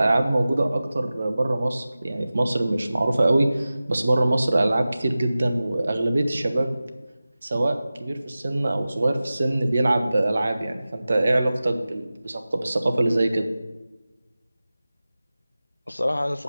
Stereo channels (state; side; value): inverted; both; correlation -0.96